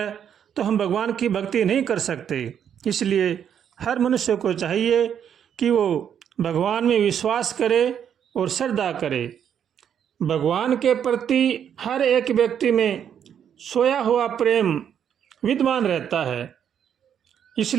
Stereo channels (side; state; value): left; quieter; 8.7 dB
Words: तो हम भगवान की भक्ति नहीं कर सकते। इसलिए हर मनुष्य को चाहिए कि वो भगवान में विश्वास करे और श्रद्धा करे। भगवान के प्रति हर एक व्यक्ति में सोया हुआ प्रेम विद्यमान रहता है।